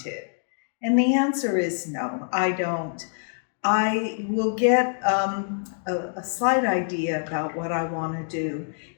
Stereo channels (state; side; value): silent; right; digital silence